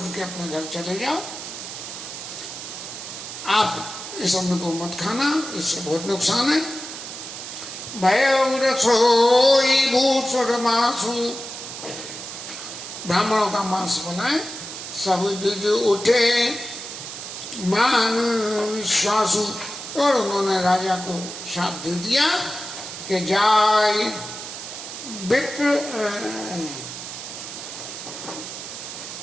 के अपने घर चले जाओ, आप इस अन्न को मत खाना, इससे बहुत नुकसान है। भय रसोई भूषण मासु, ब्राह्मणों का मांस बनाए, सब जुज उठे मान विश्वासु। और उन्होंने राजा को शाप दे दिया कि जाय विप्र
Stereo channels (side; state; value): right; noise; hiss, 9 dB below the sound